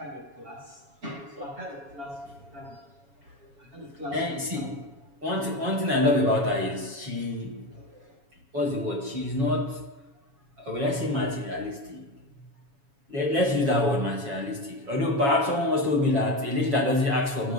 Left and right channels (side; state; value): left; late; 7.2 ms